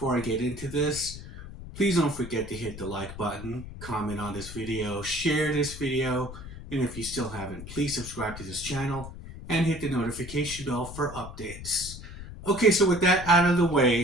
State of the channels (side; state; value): left; noise; rumble, 12 dB below the sound